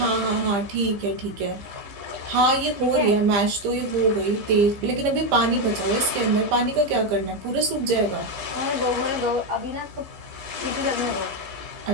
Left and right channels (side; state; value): left; late; 15 ms